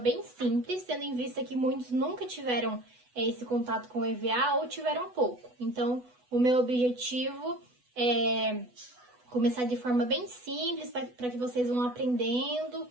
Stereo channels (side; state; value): left; late; 8.1 ms